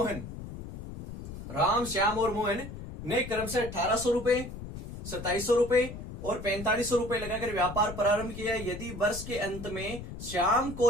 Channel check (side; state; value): left; noise; rumble, 10 dB below the sound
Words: ने क्रम से 1800 रुपए, 2700 रुपए और 4500 रुपए लगाकर व्यापार प्रारंभ किया। यदि वर्ष के अंत में श्याम